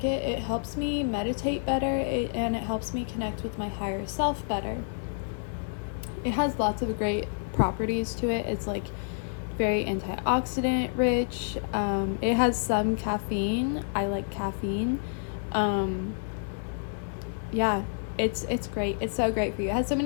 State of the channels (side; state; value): right; silent; 59 dB below the other